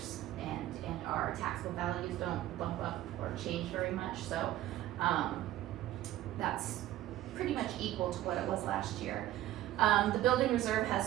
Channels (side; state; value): left; quieter; 14.0 dB